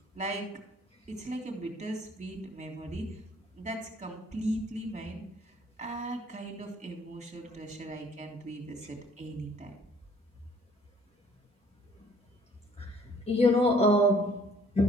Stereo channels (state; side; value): normal; both; correlation 0.58